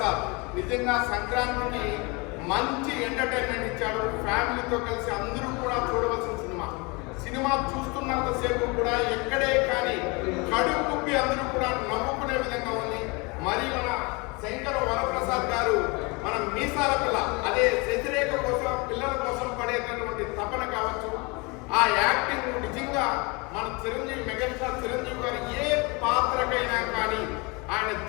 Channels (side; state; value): right; quieter; 28.1 dB